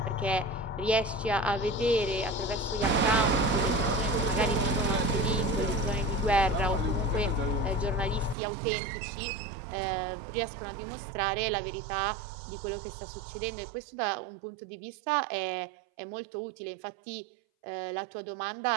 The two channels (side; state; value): left; drops out; at 8.3 s